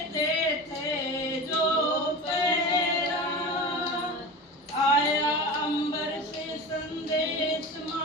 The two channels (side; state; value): both; normal; correlation 0.30